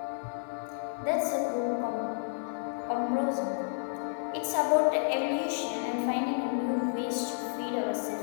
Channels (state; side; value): silent; right; digital silence